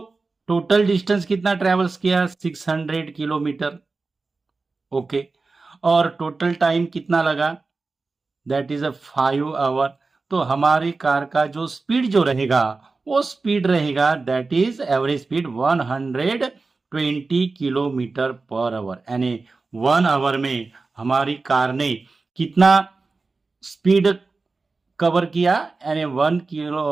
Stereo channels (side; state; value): left; quieter; 3.9 dB